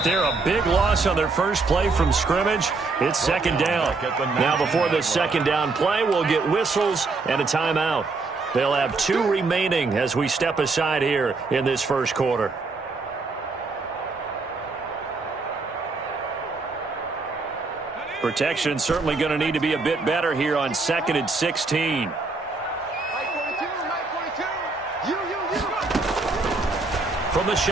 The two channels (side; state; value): left; quieter; 3.9 dB